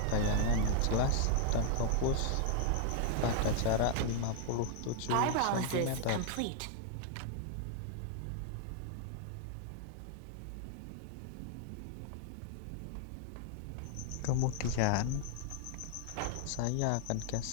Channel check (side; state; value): both; different; correlation 0.00